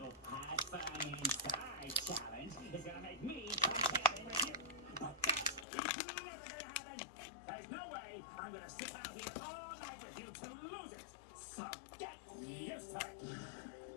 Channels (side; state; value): right; drops out; at 5.7 s